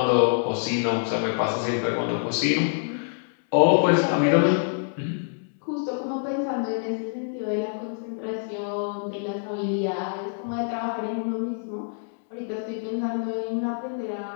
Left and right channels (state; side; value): silent; right; digital silence